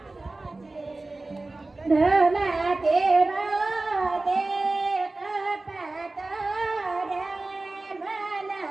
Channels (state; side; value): quieter; left; 3.1 dB